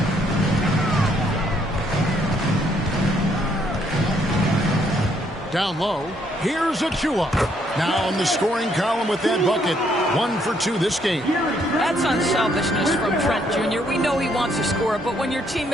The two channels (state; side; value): normal; both; correlation 0.70